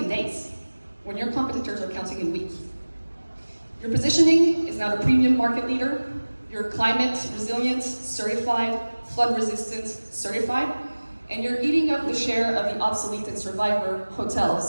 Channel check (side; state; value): both; inverted; correlation -1.00